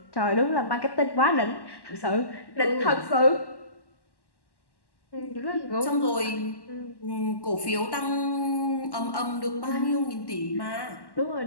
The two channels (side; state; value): right; late; 1.1 ms